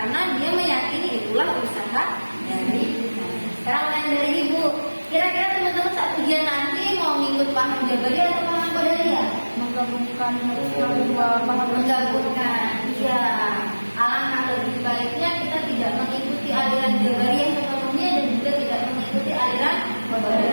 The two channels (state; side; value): inverted; both; correlation -1.00